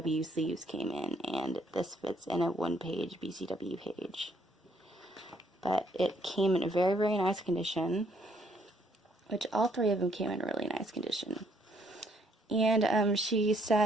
sleeves came in, and this fits in a one-page BCW page. But it came in a very, very nice condition, which all three of them came in really nice condition. And she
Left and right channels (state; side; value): normal; both; correlation 0.68